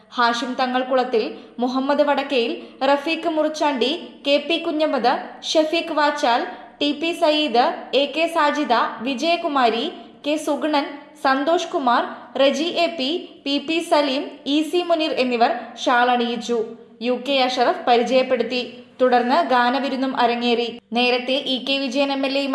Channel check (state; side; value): identical; both; correlation 1.00